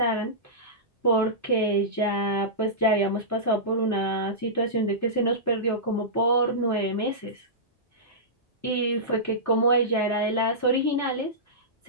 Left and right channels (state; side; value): normal; both; correlation -0.17